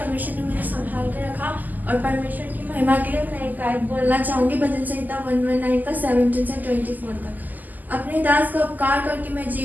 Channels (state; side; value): late; left; 0.083 ms